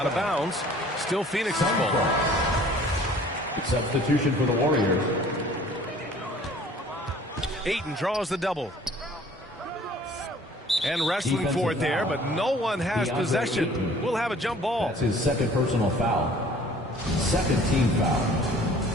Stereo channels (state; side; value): normal; both; correlation 0.52